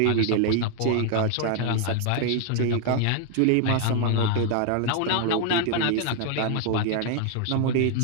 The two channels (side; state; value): both; different; correlation 0.00